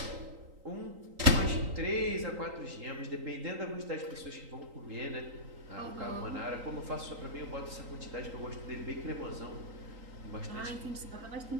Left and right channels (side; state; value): left; late; 3.8 ms